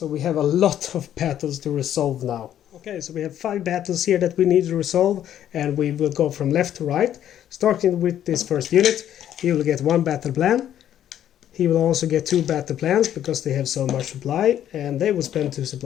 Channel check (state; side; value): quieter; right; 10.8 dB